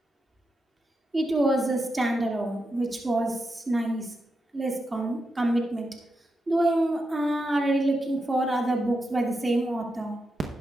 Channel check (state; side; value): normal; both; correlation 0.86